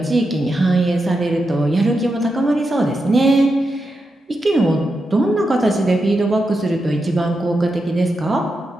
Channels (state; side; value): normal; both; correlation 0.87